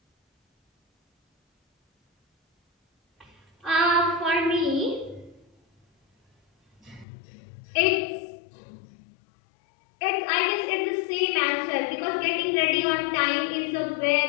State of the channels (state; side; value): drops out; right; at 7.1 s